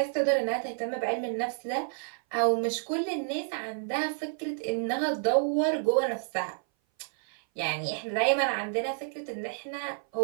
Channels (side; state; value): left; silent; 57 dB below the other